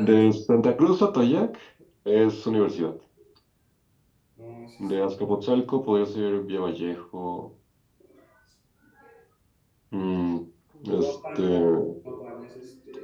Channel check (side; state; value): both; identical; correlation 1.00